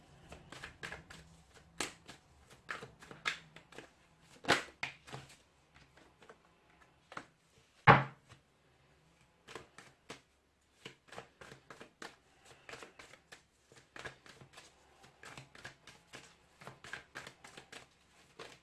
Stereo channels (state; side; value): identical; both; correlation 1.00